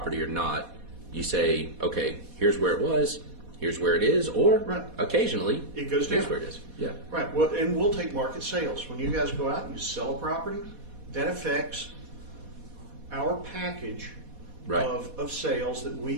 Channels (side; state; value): left; late; 4.1 ms